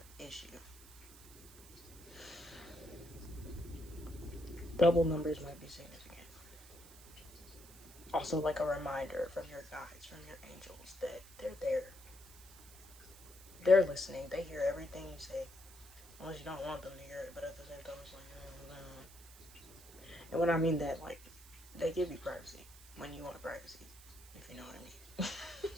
issue, double numbers might be significant. Also, like a reminder from your guides, from your angels, that they're there. They're listening. They hear everything you say. Unless you don't want them to hear it, but at the same time, it's like, and when I mean that, like, they give you privacy when you want privacy, if you know what I mean.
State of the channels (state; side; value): noise; right; hiss, 20 dB below the sound